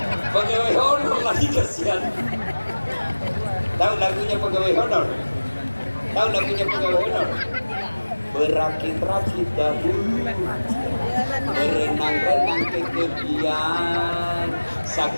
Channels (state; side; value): inverted; both; correlation -1.00